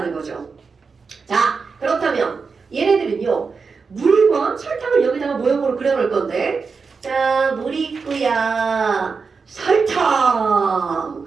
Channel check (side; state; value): left; quieter; 5.0 dB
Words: 거죠. 자, 그렇다면 얘네들은요 물과 설탕을 여기다가 모형으로 그려놓을 건데, 자, 물이 있고야